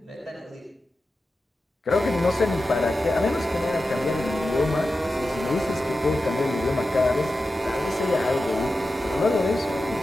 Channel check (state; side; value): normal; both; correlation 0.92